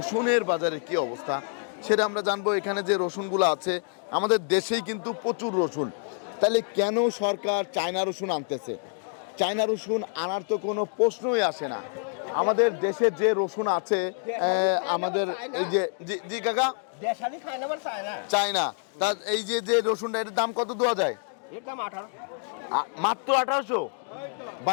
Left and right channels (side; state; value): right; silent; 56 dB below the other